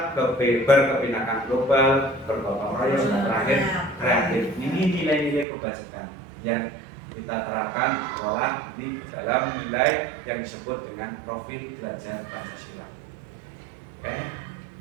berkebinekaan global, bergotong royong, dan terakhir, kreatif. Ini nilai-nilai kebajikan yang kita terapkan olah di dalam nilai yang disebut dengan profil pelajar Pancasila. Oke.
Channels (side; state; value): left; drops out; at 5.5 s